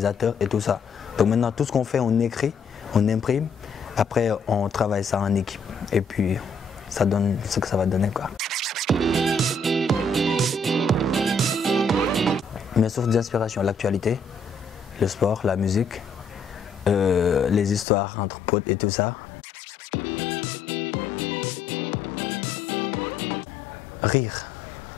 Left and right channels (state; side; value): drops out; right; at 17.9 s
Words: et tout ça. Donc maintenant tout ce qu'on fait, on écrit, on imprime, après on travaille ça en équipe et puis ça donne ce que ça va donner, quoi. Mes sources d'inspiration, l'actualité, le sport, la musique, les histoires entre potes et tout ça. Rire.